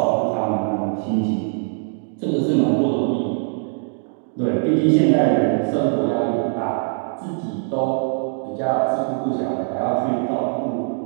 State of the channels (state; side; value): silent; left; 64 dB below the other